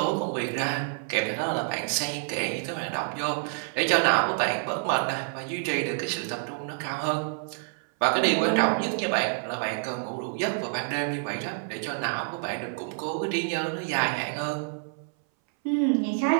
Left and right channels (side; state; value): left; silent; 59 dB below the other